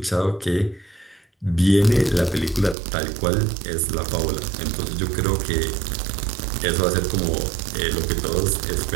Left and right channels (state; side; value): drops out; left; at 2.8 s